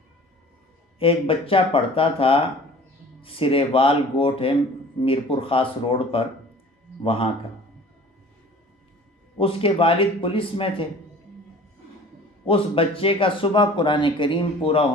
ایک بچہ پڑھتا تھا، سریوال گوٹ ہے میرپور خاص روڈ پر وہاں کا۔ اس کے والد پولیس میں تھے۔ اس بچے کا صبح قرآن کریم پورا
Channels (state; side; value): normal; both; correlation 0.46